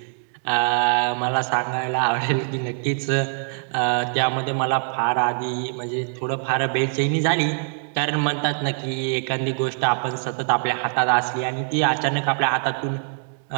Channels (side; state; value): left; silent; 63 dB below the other